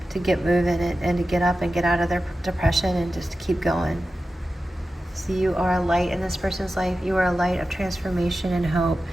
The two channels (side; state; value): both; normal; correlation 0.93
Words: to get moving and to get up and get out of their depression and just keep going. So you are a light in this person's life. You are a light of transformation and hope.